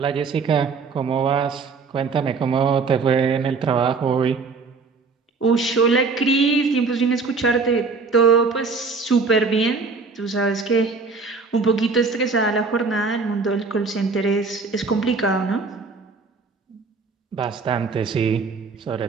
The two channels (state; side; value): quieter; left; 4.5 dB